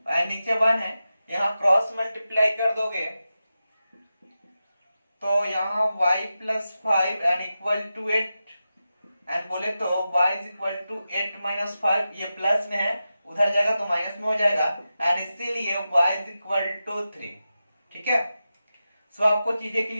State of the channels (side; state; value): both; inverted; correlation -0.91